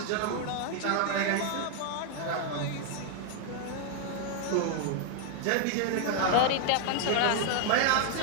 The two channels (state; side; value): different; both; correlation 0.00